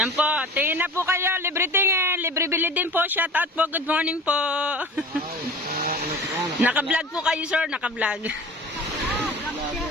po, tingin na po kayo, libre tingin, libre bili din po, shout out po, good morning po. Naka-vlog po kayo sir, naka-vlog.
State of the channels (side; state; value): both; normal; correlation 0.39